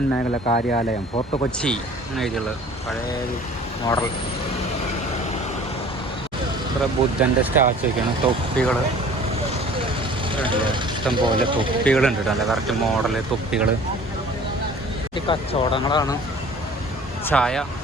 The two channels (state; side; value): normal; both; correlation 0.48